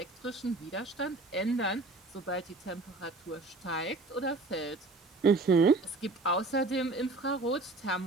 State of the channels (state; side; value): quieter; left; 3.2 dB